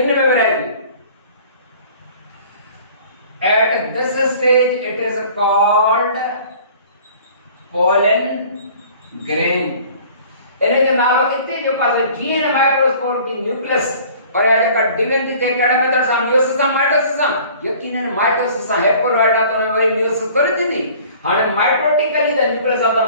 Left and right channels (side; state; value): both; inverted; correlation -0.49